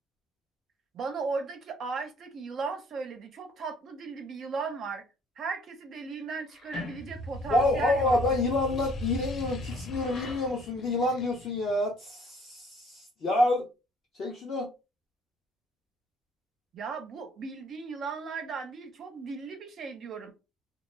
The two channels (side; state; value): both; normal; correlation 0.59